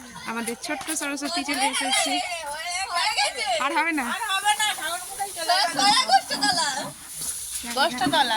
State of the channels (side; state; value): both; identical; correlation 1.00